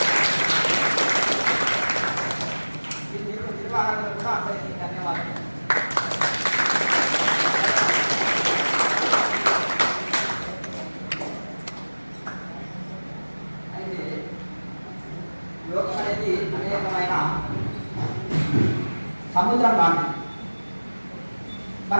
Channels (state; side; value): inverted; both; correlation -1.00